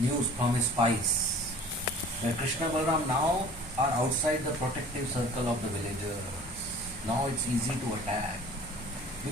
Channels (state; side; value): normal; both; correlation 0.47